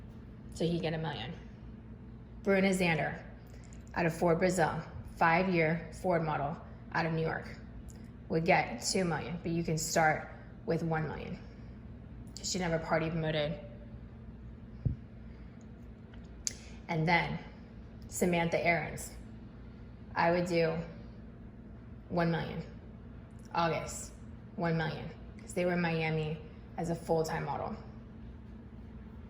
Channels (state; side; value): identical; both; correlation 1.00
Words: So he'd get $1 million. Bruna Zander out of Ford Brazil, 5-year Ford model out of New York, would get $2 million, but you can start with $1 million. She never party promoted. And then Samantha Aarons, I would do $1 million. August, $1 million, because they were in Miami as a full-time model